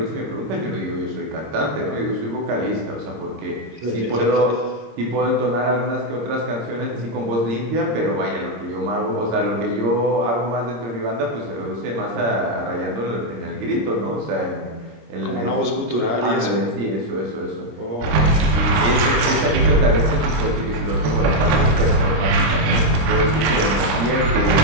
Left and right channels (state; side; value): late; left; 26 ms